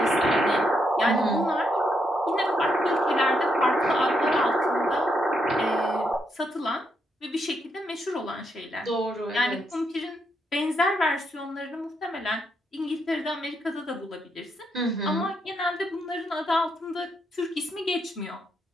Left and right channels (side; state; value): both; normal; correlation 0.79